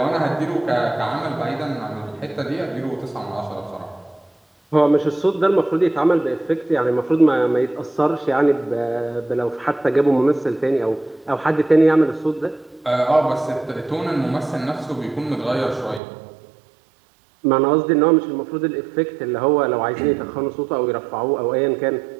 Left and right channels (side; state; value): left; drops out; at 16.0 s